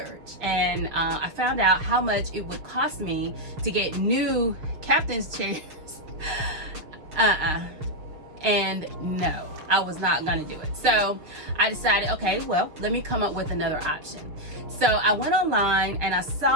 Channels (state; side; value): late; left; 6.5 ms